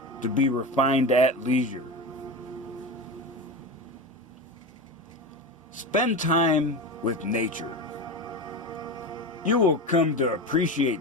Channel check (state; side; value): normal; both; correlation 0.23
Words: to be refined at leisure. Spend time with nature. You will come to